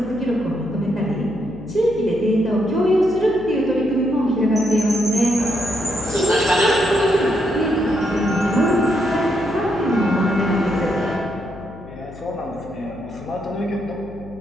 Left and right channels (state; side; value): noise; left; hum, 16 dB below the sound